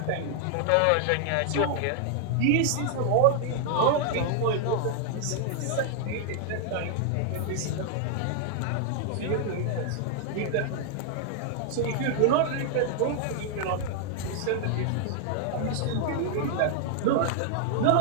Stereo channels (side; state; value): both; different; correlation 0.00